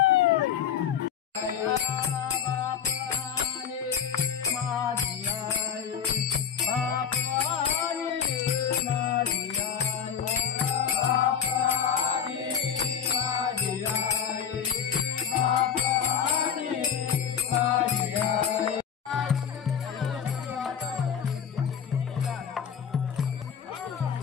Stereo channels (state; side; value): quieter; right; 7.9 dB